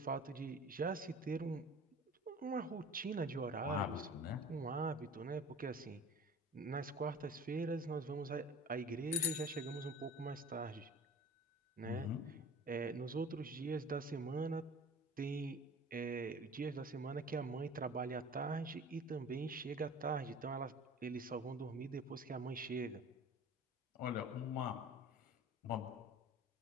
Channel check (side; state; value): both; normal; correlation 0.42